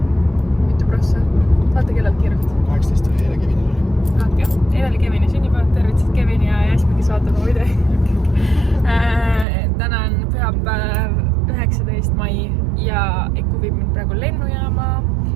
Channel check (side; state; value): left; drops out; at 9.5 s